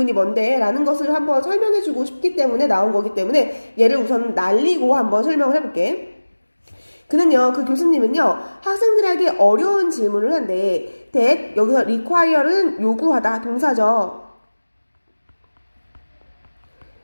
뭔데 라는 것을 한번 설명해주고 싶기 때문에 나온 거기 때문에 얘를 우선 날리고 한번 설명을 해볼게. 그는요, 그 교수님은요, 학생들에게 어려운 질문을 한대. that, 여기서 require는 요구하다, 동사죠.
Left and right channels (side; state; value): both; inverted; correlation -1.00